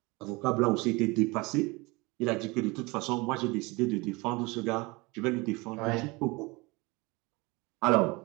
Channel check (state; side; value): quieter; left; 24.9 dB